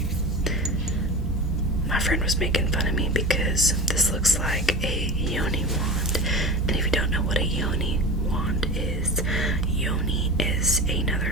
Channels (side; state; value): both; normal; correlation 0.31